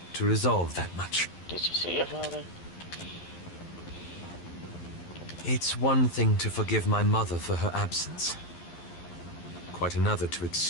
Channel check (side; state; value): right; late; 11 ms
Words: to resolve that much. Did you see your father? It's one thing to forgive my mother for her absence. Quite another to